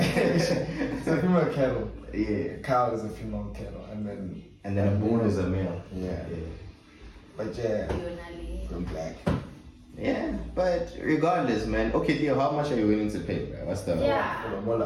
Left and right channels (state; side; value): identical; both; correlation 1.00